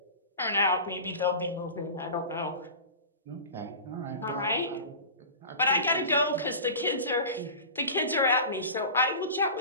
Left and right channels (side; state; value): both; inverted; correlation -0.34